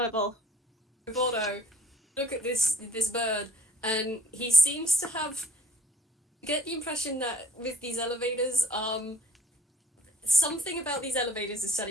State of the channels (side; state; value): both; normal; correlation 0.56